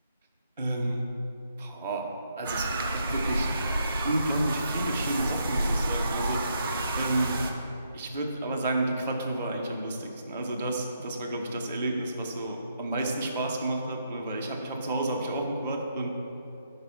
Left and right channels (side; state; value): both; inverted; correlation -0.76